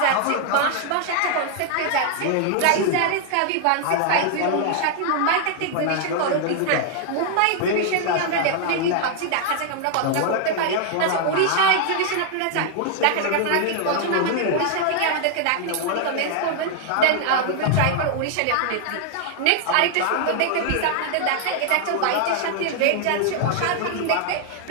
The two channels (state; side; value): different; both; correlation 0.00